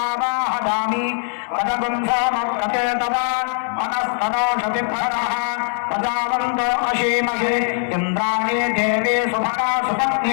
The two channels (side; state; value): right; silent; digital silence